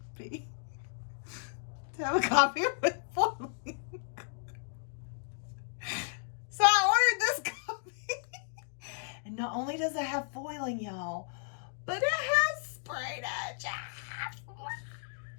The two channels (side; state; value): right; silent; digital silence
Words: be to have a copy with foiling. So I ordered this copy. And not only does it have foiling, y'all, but it has sprayed edges.